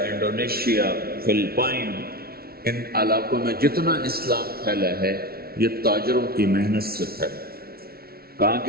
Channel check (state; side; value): late; left; 0.44 ms